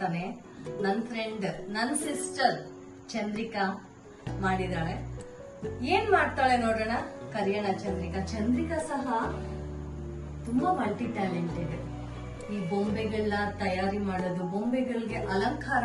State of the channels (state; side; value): identical; both; correlation 1.00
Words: ನನ್ನ ಫ್ರೆಂಡ್, ನನ್ನ ಸಿಸ್ಟರ್ ಚಂದ್ರಿಕಾ ಮಾಡಿದಾಳೆ. ಏನ್ ಮಾಡ್ತಾಳೆ ನೋಡೋಣ, ಕರಿಯೋಣ ಚಂದ್ರಿಕಾ. ಚಂದ್ರಿಕಾ ಸಹ ತುಂಬಾ ಮಲ್ಟಿ ಟ್ಯಾಲೆಂಟೆಡ್. ಈ ಬೊಂಬೆಗಳನ್ನ ತಯಾರಿ ಮಾಡೋದು, ಬೊಂಬೆಗಳಿಗೆ ಅಲಂಕಾರ